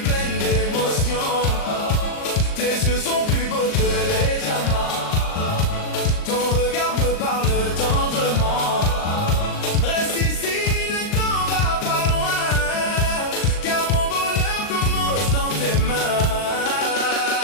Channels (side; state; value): right; late; 39 ms